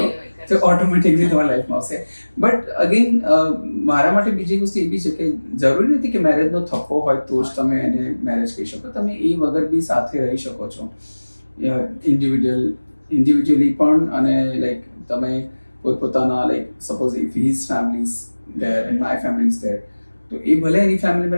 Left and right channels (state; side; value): inverted; both; correlation -1.00